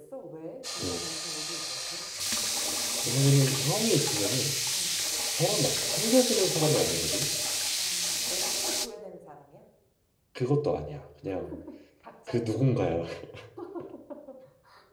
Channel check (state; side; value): identical; both; correlation 1.00